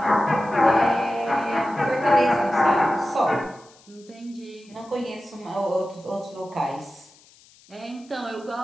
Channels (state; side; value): noise; left; hiss, 27 dB below the sound